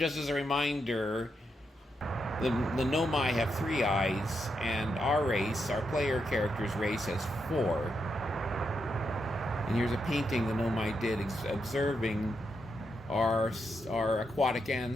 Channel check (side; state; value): both; normal; correlation 0.83